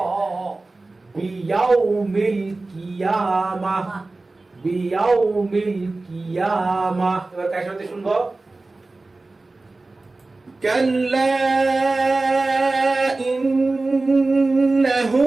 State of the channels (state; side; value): quieter; left; 3.3 dB